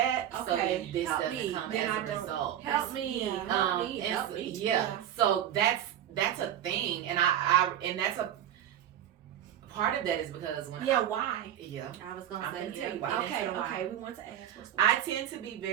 so Okay. then this Help doesn't me. come Then as I a don't. result. Help me. Yeah. Help me. and Help so- me. yeah. So that's a thing, and and that's a part of that is because when Yeah. Why? I was I'm gonna gonna say tell you yeah. why. Okay. Get into Okay. We want to ask what's the. I tend to be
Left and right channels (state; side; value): quieter; left; 10.8 dB